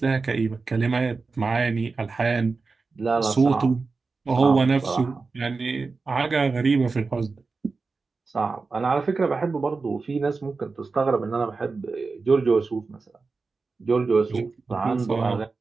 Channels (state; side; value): quieter; left; 4.2 dB